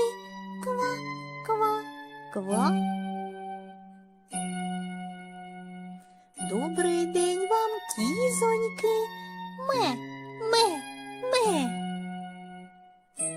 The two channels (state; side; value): identical; both; correlation 1.00